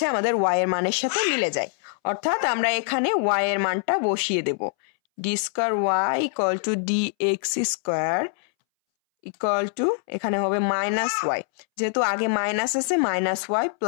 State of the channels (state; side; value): silent; right; 63 dB below the other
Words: আমাদের y এর মানের সাথে মিলে যায়, অর্থাৎ আমরা এখানে y এর মানটা বসিয়ে দেব, d²y equal to dx² equal to, এখানে হবে মাইনাস y, যেহেতু আগে মাইনাস আছে minus y